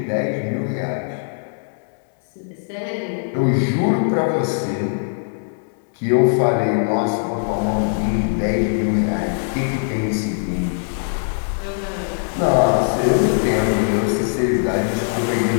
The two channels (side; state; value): right; silent; digital silence